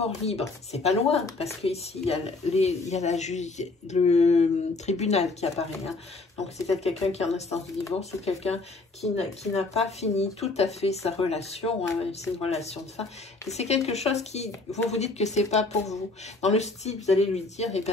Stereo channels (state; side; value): quieter; right; 3.4 dB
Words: libre. C'est pas loin, parce qu'ici, il y a, le tribunal qui apparaît. Hein. Donc, c'est peut-être quelqu'un qui est en instance de divorce ou quelqu'un qui n'a pas fini tout à fait sa relation. Hein. C'est une relation de fin. Et c'est quelque chose qui, vous dites que c'est pas pour vous. Dans le style, vous allez lui dire, eh